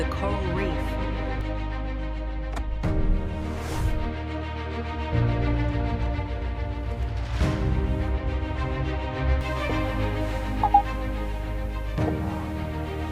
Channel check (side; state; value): both; identical; correlation 1.00